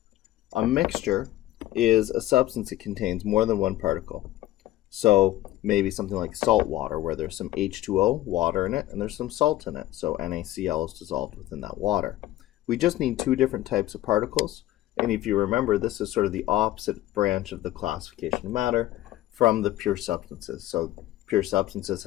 A mixture is a substance that contains more than one particle. So maybe something like salt water where there's some H2O, water in it, and there's some salt in it. So NaCl is dissolved within that water. We just need two different types of particles. And if you remember, this is sort of the opposite branch of the classification of matter from the pure substances. So pure substances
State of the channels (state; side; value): quieter; right; 15.1 dB